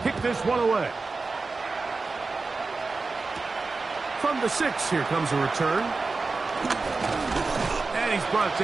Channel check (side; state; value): left; quieter; 3.9 dB